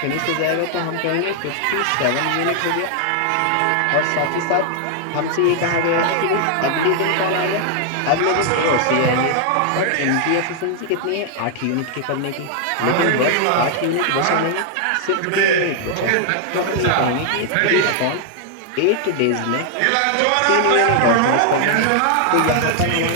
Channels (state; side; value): different; both; correlation 0.00